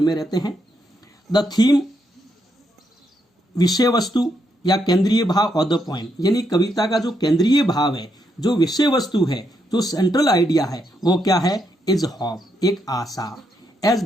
में रहते हैं। द थीम, विषय वस्तु या केंद्रीय भाव ऑफ द पोएम, यानी कविता का जो केंद्रीय भाव है, जो विषय वस्तु है, जो सेंट्रल आइडिया है, वो क्या है, इज होप, एक आशा। एज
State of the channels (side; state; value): both; normal; correlation 0.79